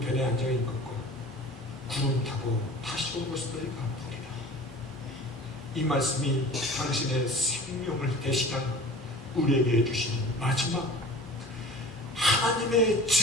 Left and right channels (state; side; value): normal; both; correlation 0.41